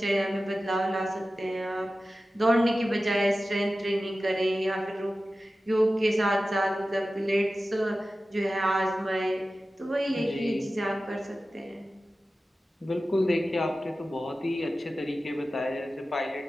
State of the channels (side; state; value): both; normal; correlation 0.95